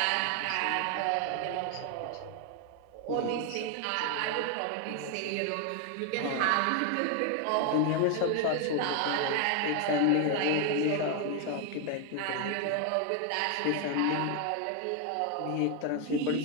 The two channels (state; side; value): different; both; correlation 0.01